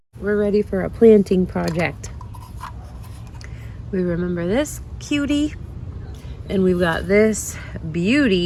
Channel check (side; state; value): both; identical; correlation 1.00